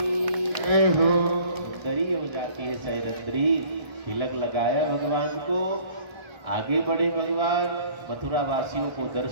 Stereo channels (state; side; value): late; left; 1.3 ms